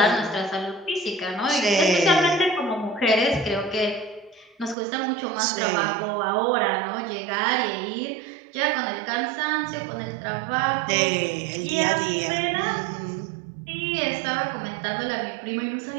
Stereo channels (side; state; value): left; drops out; at 4.8 s